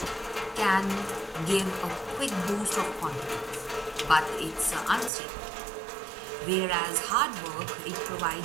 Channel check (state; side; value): drops out; left; at 5.1 s